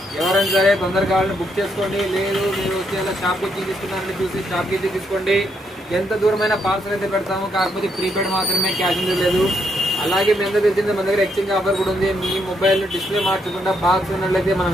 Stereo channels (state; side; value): normal; both; correlation 0.76